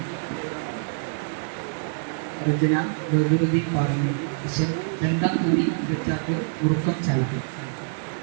രചന ബദറുദ്ദീൻ പറഞ്ഞു. വിഷൻ രണ്ടാം കൃതി ഇരുച്ചാക്ക് ഉറുക്കം ചായ്ക്കും.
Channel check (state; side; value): silent; left; digital silence